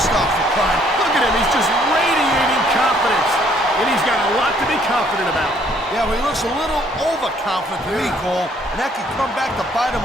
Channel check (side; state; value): both; normal; correlation 0.64